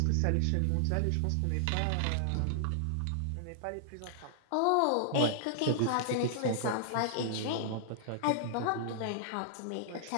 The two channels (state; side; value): different; both; correlation -0.01